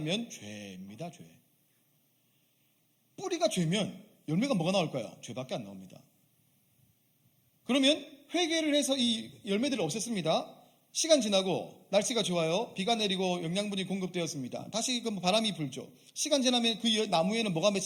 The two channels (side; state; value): both; identical; correlation 1.00